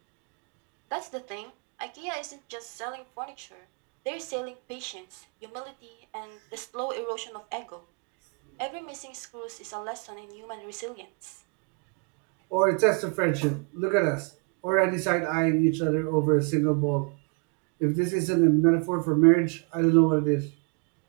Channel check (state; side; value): quieter; left; 34.7 dB